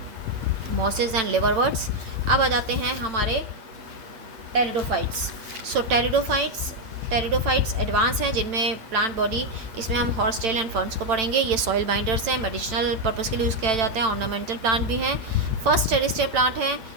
मॉसेस एंड लिवरवर्ट्स। अब आ जाते हैं हमारे टेरिडोफाइट्स। सो टेरिडोफाइट्स एडवांस हैं जिनमें प्लांट बॉडी, इसमें हम हॉर्स टेल एंड फर्न्स को पढ़ेंगे। ये सॉइल बाइंडर्स हैं, मेडिसिनल पर्पज़ के लिए यूज़ किया जाता है, ऑर्नामेंटल प्लांट भी हैं। फर्स्ट टेरिस्टियर प्लांट है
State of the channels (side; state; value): left; late; 8.9 ms